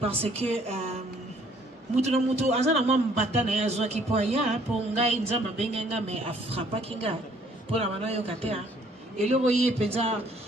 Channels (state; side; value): normal; both; correlation 0.61